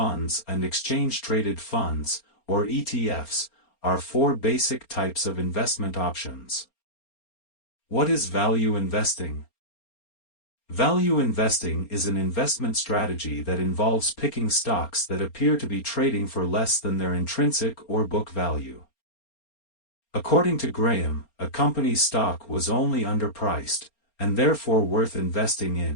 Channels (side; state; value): right; late; 4.3 ms